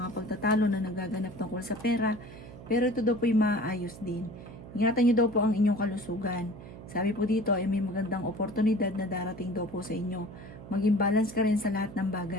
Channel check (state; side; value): noise; right; hum, 15 dB below the sound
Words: pagtatalo na nagaganap tungkol sa pera. Pero ito daw po ay maayos din. Ingatan niyo daw po ang inyong kalusugan. Sabi po dito ay may magandang oportunidad na darating daw po sa inyo. Maging balance ka rin sa lahat ng